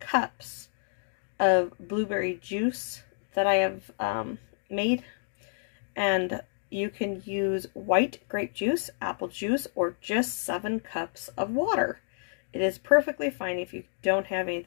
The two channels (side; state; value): right; silent; digital silence